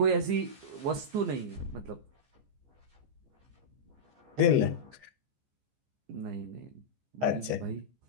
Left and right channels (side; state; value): left; late; 15 ms